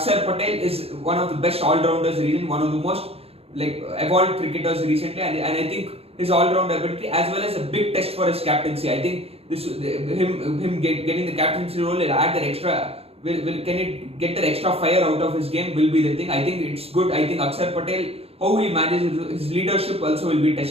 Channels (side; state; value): left; late; 0.29 ms